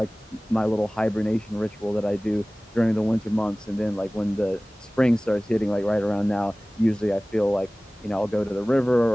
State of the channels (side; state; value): both; normal; correlation 0.98